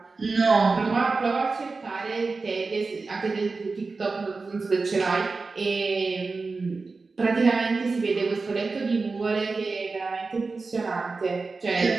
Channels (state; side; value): quieter; left; 4.0 dB